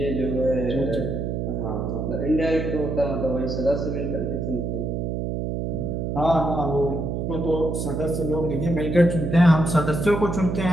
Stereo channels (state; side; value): noise; right; hum, 2 dB below the sound